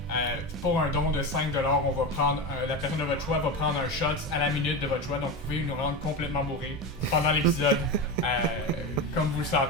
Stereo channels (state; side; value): normal; both; correlation 0.20